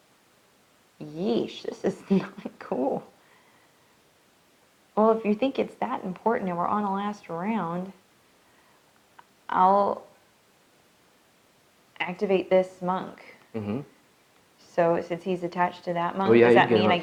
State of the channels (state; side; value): identical; both; correlation 1.00